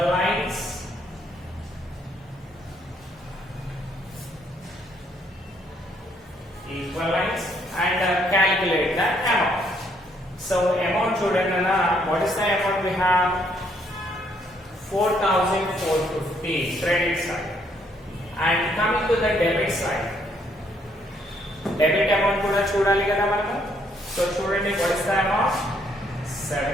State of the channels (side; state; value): both; normal; correlation 0.69